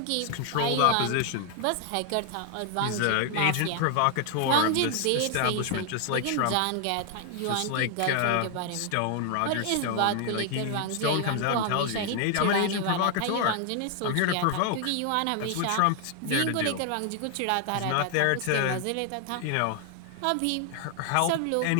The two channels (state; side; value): different; both; correlation 0.00